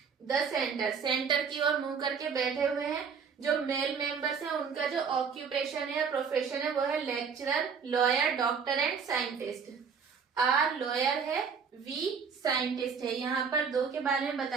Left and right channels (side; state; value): left; quieter; 6.1 dB